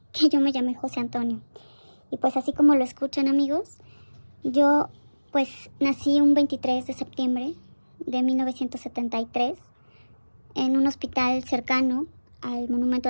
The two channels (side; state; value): both; inverted; correlation -1.00